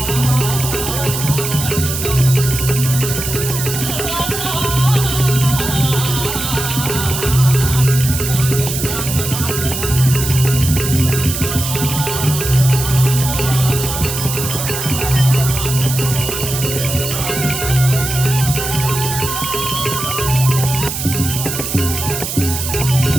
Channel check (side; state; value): right; noise; hiss, 4 dB below the sound